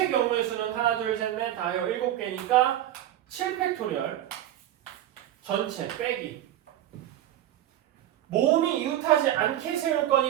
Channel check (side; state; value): left; quieter; 12.5 dB